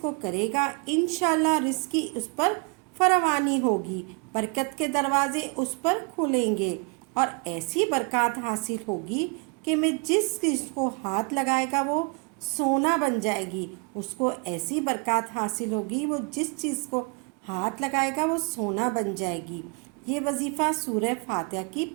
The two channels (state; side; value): quieter; left; 32.1 dB